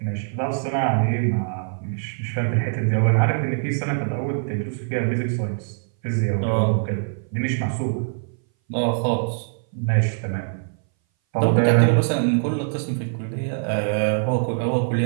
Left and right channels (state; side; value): silent; left; 60 dB below the other